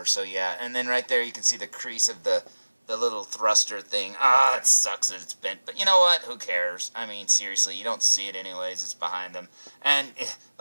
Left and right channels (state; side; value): inverted; both; correlation -1.00